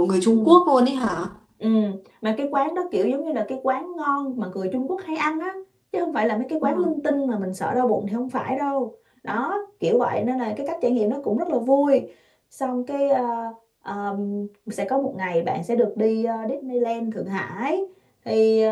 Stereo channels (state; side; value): identical; both; correlation 1.00